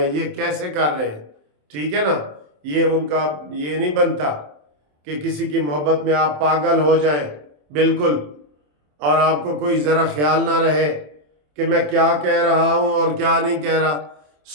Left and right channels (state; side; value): late; left; 27 ms